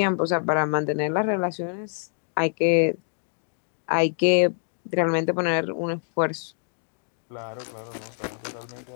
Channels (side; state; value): right; silent; digital silence